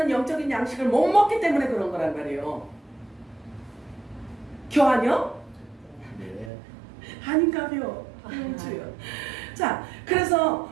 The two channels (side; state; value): left; drops out; at 6.5 s